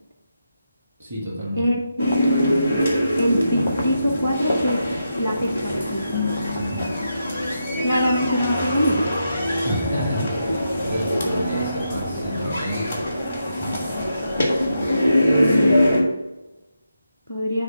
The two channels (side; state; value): both; inverted; correlation -0.85